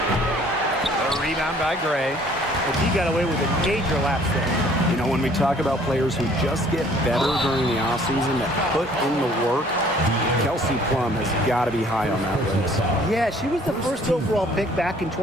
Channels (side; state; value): both; normal; correlation 0.57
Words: The rebound by Gray. But he got away with a major lapse there. You know, when we talk about players who just get better during the offseason, that put in the work, Kelsey Plum has got to be high on that list. Yeah, she was the first overall pick back in